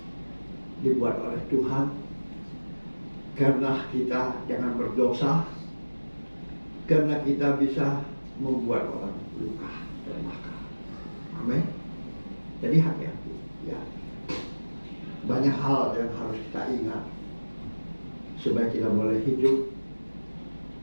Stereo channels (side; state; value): both; inverted; correlation -1.00